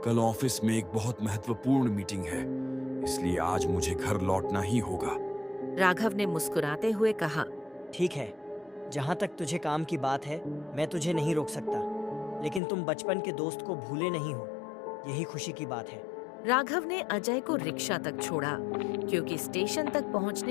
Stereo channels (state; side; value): drops out; right; at 12.6 s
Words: कल ऑफिस में एक बहुत महत्वपूर्ण मीटिंग है, इसलिए आज मुझे घर लौटना ही होगा। राघव ने मुस्कुराते हुए कहा, ठीक है, जहाँ तक तुझे काम की बात है मैं तुझे नहीं रोक सकता, लेकिन तुम बचपन के दोस्त को भूले नहीं हो, यही खुशी की बात है। राघव ने अजय को रिक्शा तक छोड़ा क्योंकि स्टेशन तक